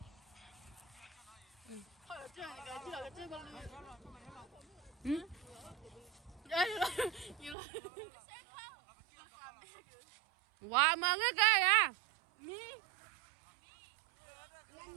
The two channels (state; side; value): drops out; left; at 7.6 s